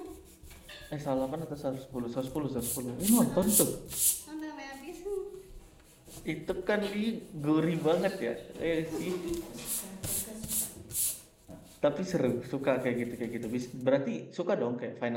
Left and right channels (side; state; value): both; identical; correlation 1.00